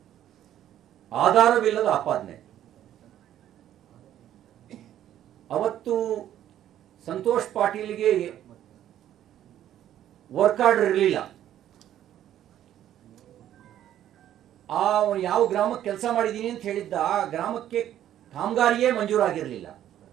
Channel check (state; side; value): quieter; left; 11.6 dB